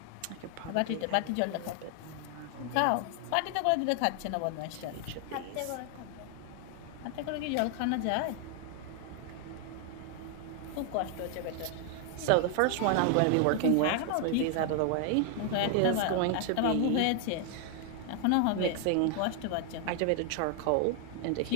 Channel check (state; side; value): different; both; correlation 0.00